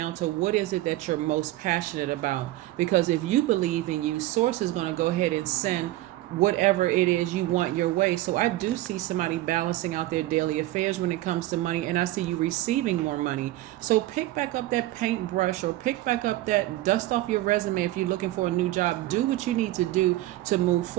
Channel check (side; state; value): left; quieter; 16.3 dB